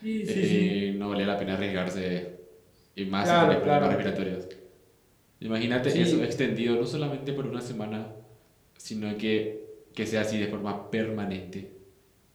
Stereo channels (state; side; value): identical; both; correlation 1.00